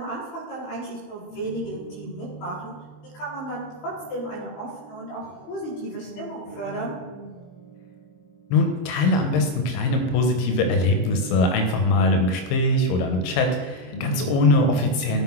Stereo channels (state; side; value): late; right; 22 ms